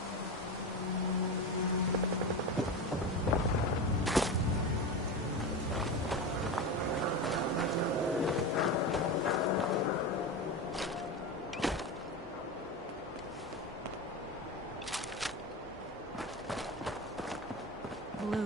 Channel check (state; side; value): normal; both; correlation 0.22